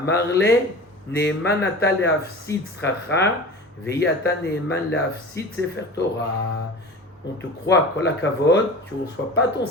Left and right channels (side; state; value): both; normal; correlation 0.35